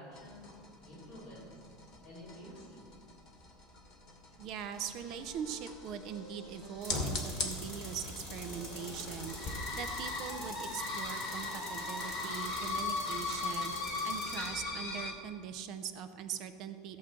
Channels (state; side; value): normal; both; correlation 0.31